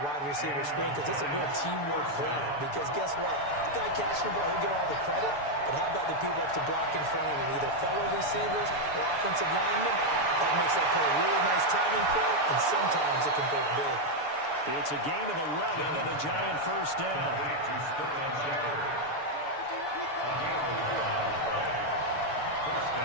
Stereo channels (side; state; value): right; late; 6.9 ms